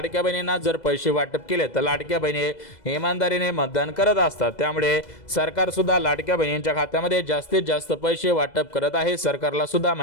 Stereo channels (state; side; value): late; right; 2.0 ms